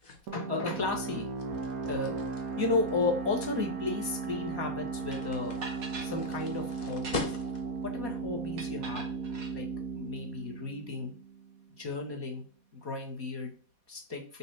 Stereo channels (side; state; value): left; late; 4.2 ms